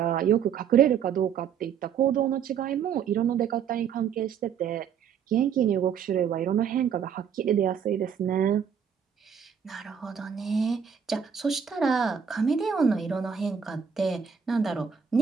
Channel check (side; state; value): left; quieter; 7.5 dB